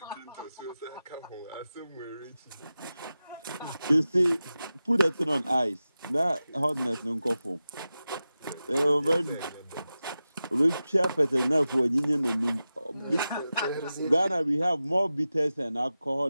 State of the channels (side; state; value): both; inverted; correlation -0.93